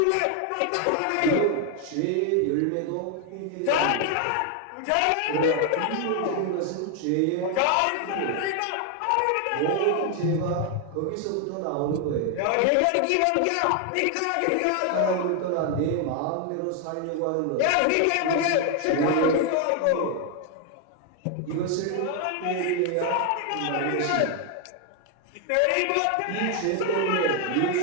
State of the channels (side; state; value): both; different; correlation 0.01